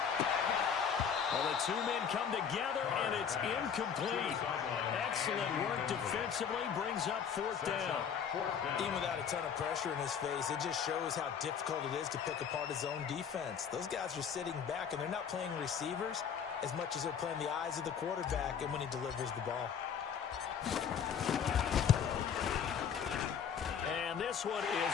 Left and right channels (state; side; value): quieter; right; 7.5 dB